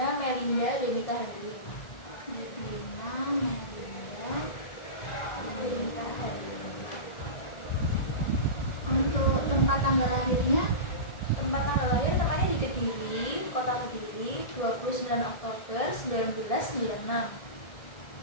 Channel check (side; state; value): right; late; 1.7 ms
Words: Melinda Denika Hari. Lidwina Melinda Denika Hari. Untuk tempat tanggal lahirnya? Tempat tanggal lahir tempatnya di Kediri, Kota Kediri, 29 Oktober 1996.